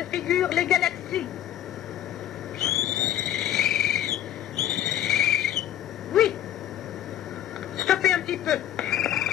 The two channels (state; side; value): quieter; right; 11.7 dB